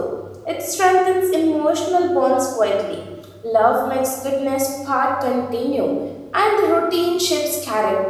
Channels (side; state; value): both; identical; correlation 1.00